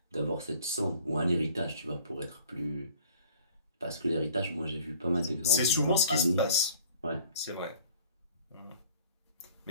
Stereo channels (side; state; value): both; inverted; correlation -0.53